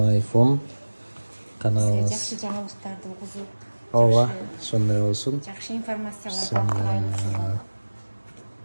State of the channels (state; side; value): inverted; both; correlation -1.00